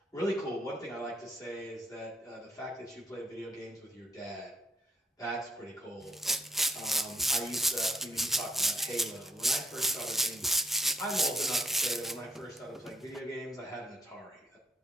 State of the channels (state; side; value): normal; both; correlation 0.66